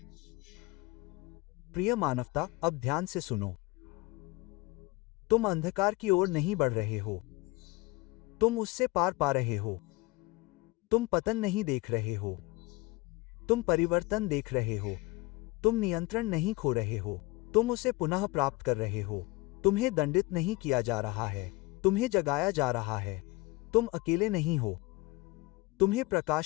प्रिय मानवता, अब ध्यान से सुनो। तुम अंधकार की ओर नहीं बढ़ रहे हो। तुम उससे पार पा रहे हो। तुम पतन नहीं देख रहे हो। तुम परिवर्तन देख रहे हो। तुम नियंत्रण नहीं खो रहे हो। तुम उसे पुनः प्राप्त कर रहे हो। तुम्हें दंडित नहीं किया जा रहा है। तुम्हें जगाया जा रहा है। तुम अकेले नहीं हो। तुम्हें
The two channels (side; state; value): right; quieter; 22.3 dB